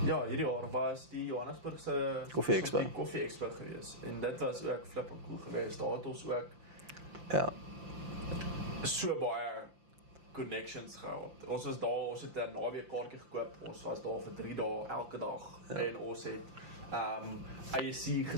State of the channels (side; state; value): left; late; 5.8 ms